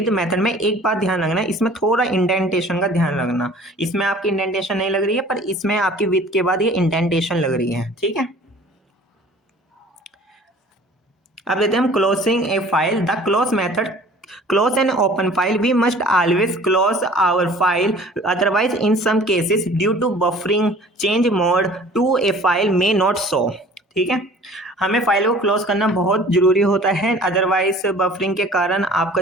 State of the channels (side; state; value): both; normal; correlation 0.48